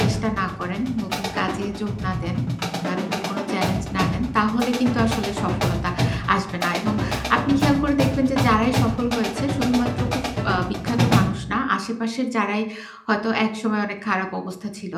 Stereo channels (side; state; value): both; identical; correlation 1.00